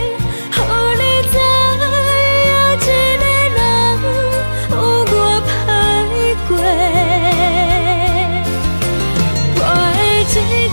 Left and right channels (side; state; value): both; inverted; correlation -1.00